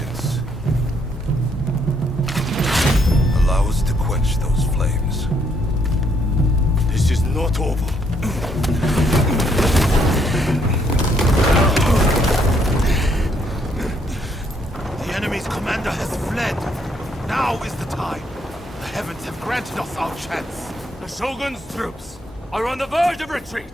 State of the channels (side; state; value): both; normal; correlation 0.71